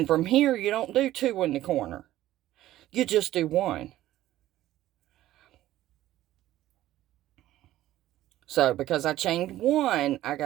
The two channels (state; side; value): quieter; left; 14.3 dB